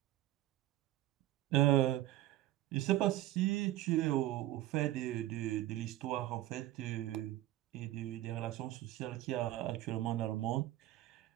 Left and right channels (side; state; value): left; quieter; 15.2 dB